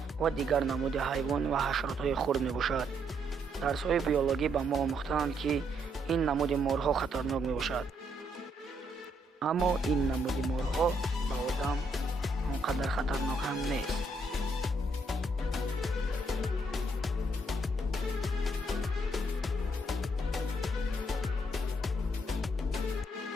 ва дигар намуди ҳайвон ва ҳашаротҳои хурд мебошад. дарсҳои биологӣ ба мо омӯхтаанд ки ин намуди морҳо хатарнок мебошад. аммо ин намуди морҳо ба одам он қадар хатарнок ҳам нест.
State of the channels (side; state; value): both; normal; correlation 0.74